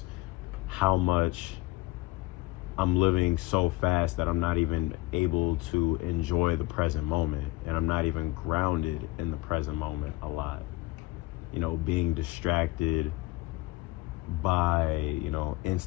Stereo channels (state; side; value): quieter; right; 20.6 dB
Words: how much I'm living so fast that I'm not even able to enjoy the present moment, and I'm not even grounded in the present moment a lot. Being distracted by,